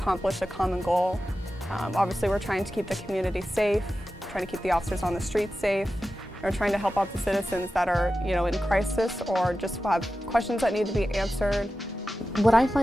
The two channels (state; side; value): normal; both; correlation 0.93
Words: a common goal. Obviously, we're trying to keep the community safe, trying to keep the officers on the streets safe. We're trying to help out the citizens that are, in crisis or just have questions that need to be answered. What I